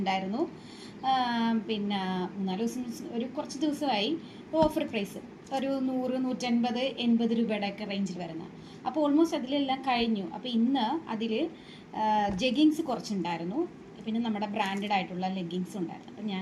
പിന്നെ 3-4 ദിവസം കുറച്ച് ദിവസമായി ഓഫർ പ്രൈസ് ഒരു 100-150-80 രൂപയുടെയൊക്കെ റേഞ്ചിൽ വരുന്ന. അപ്പോൾ ഓൾമോസ്റ്റ് അതിലെല്ലാം കഴിഞ്ഞു. അപ്പോൾ ഇന്ന് അതിൽ ജെഗിങ്സ് കുറച്ചുണ്ടായിരുന്നു, പിന്നെ നമ്മുടെ ബ്രാൻഡഡ് ആയിട്ടുള്ള ലെഗിങ്സും ഉണ്ടായിരുന്നു. അപ്പം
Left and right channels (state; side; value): identical; both; correlation 1.00